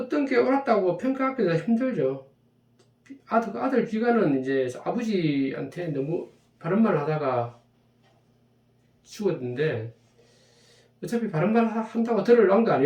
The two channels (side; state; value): both; identical; correlation 1.00